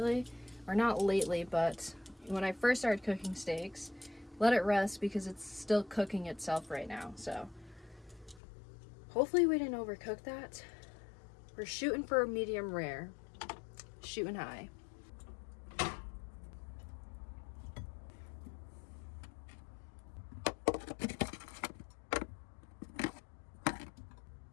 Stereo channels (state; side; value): drops out; right; at 8.4 s